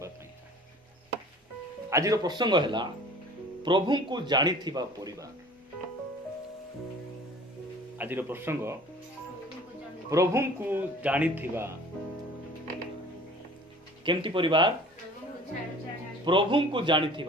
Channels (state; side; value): normal; both; correlation 0.47